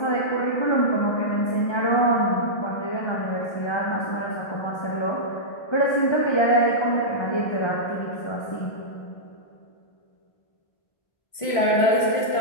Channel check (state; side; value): late; right; 1.5 ms